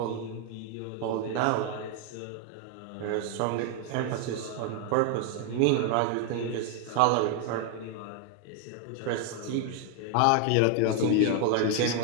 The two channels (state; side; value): different; both; correlation 0.00